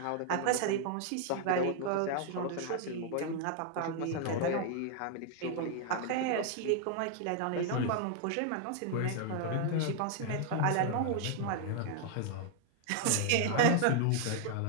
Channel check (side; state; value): both; different; correlation 0.00